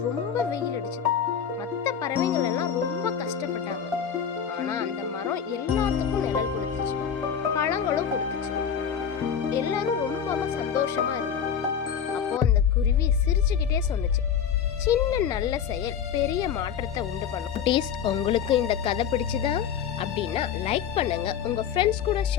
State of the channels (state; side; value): quieter; right; 7.8 dB